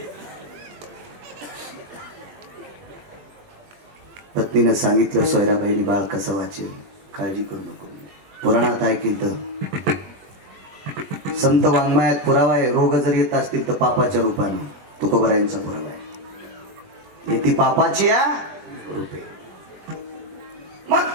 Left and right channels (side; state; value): left; late; 20 ms